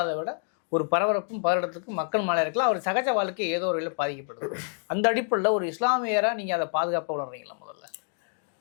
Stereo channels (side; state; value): right; silent; 57 dB below the other